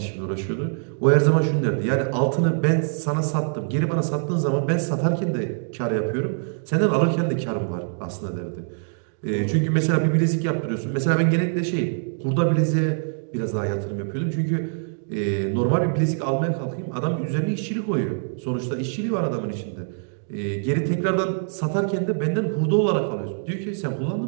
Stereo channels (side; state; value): left; silent; digital silence